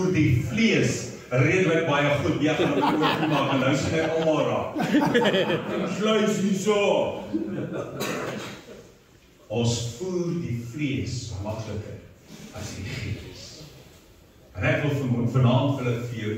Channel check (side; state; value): both; identical; correlation 1.00